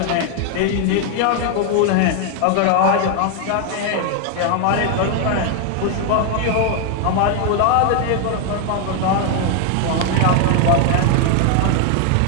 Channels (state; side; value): different; both; correlation 0.00